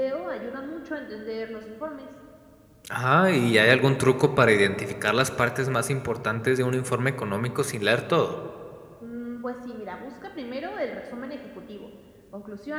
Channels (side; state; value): both; identical; correlation 1.00